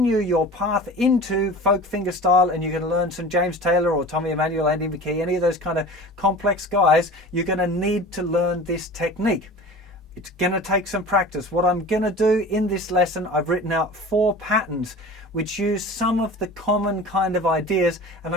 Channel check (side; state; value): both; normal; correlation 0.38